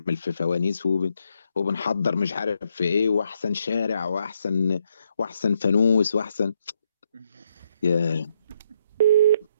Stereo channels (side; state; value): both; inverted; correlation -0.75